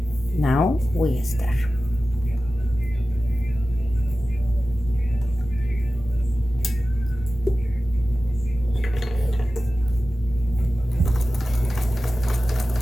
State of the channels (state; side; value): normal; both; correlation 0.95